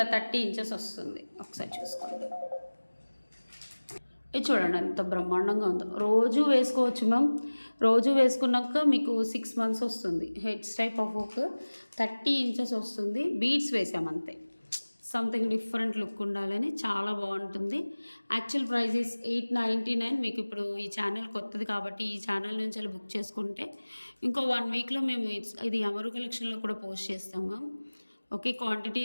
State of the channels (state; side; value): inverted; both; correlation -1.00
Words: 30 ఇంచెస్ వస్తుంది. ఒకసారి చూసుకోండి. ఇది చూడండి ఎంత బ్రహ్మాండంగా ఉందో. రోజు వేసుకోవచ్చు మ్యామ్. రోజు వేసుకున్నాక మీకు 6 మంత్స్ వస్తుంది. Heads type of hook 30 inches వస్తుంది. బీడ్స్ వేసామంతే, సంథింగ్ డిఫరెంట్ లుక్ ఉండాలని. చాలా బాగుంటుంది. Actual price is 899. మీకు ఇప్పుడు ఈ ఛానల్ కొత్తది కాబట్టి ఈ ఛానల్ నుంచి అలా బుక్ చేసుకుంటే ఇంకో 1 వీక్లో మేము ఇది అమరు కలెక్షన్లో కూడా పోస్ట్ చేస్తాం మ్యామ్. ఓకే, క్వాంటిటీ